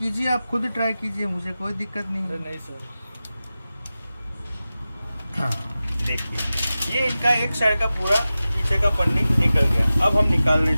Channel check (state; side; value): inverted; both; correlation -0.95